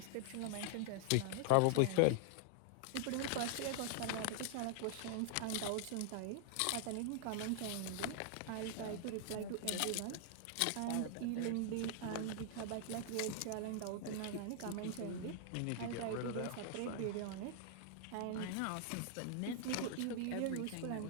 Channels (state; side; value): different; both; correlation -0.01